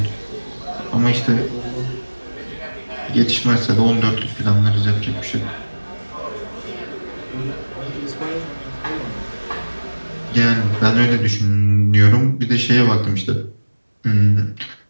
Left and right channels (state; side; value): inverted; both; correlation -1.00